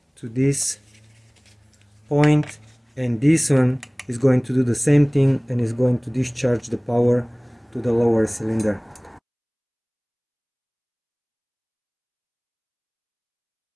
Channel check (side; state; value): both; identical; correlation 1.00